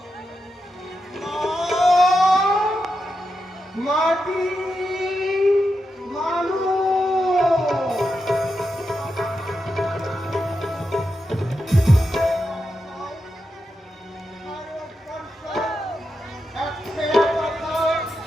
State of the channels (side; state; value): both; normal; correlation 0.87